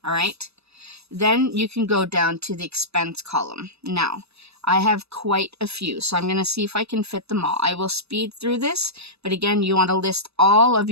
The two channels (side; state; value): left; late; 0.79 ms